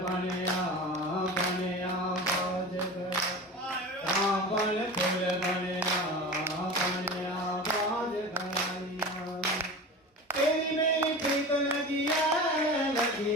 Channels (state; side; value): normal; both; correlation 0.32